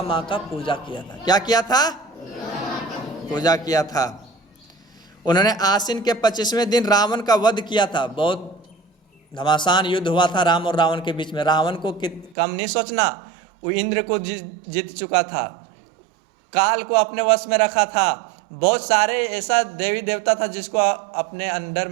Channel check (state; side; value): drops out; left; at 12.4 s